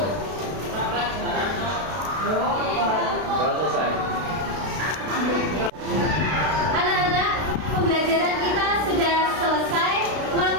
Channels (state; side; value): late; left; 32 ms